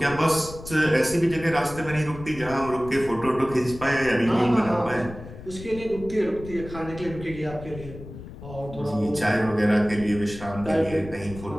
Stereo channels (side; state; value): left; noise; rumble, 14 dB below the sound